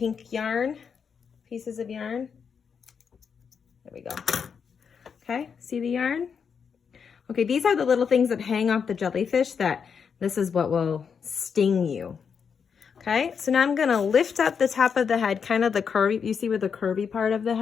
yarn, pieces of yarn. There we go. Okay, see the yarn? Okay, these are the little things that hang off the jellyfish that this is what will sting you. Okay, so now I'm going to lift up the top of the head, kind of the curvy, you see where the curvy part of the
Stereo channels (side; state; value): right; quieter; 6.5 dB